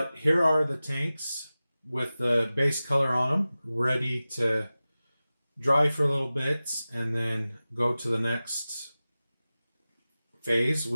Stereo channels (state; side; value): inverted; both; correlation -0.96